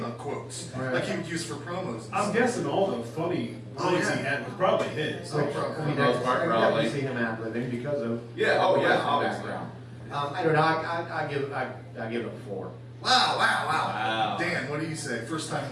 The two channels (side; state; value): both; identical; correlation 1.00